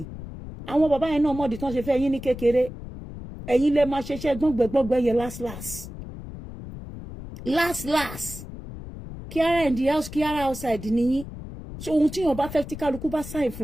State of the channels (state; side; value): noise; left; rumble, 11 dB below the sound